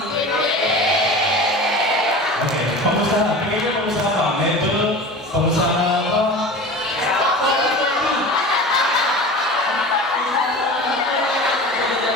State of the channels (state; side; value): normal; both; correlation 0.35